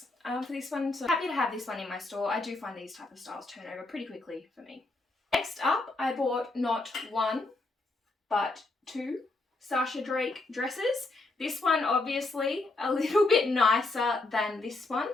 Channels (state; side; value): quieter; right; 3.2 dB